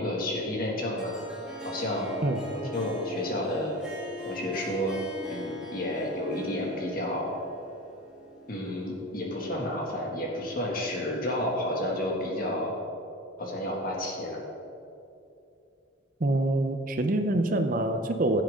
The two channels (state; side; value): normal; both; correlation 0.36